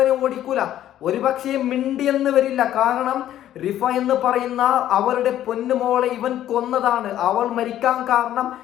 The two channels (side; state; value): right; quieter; 12.1 dB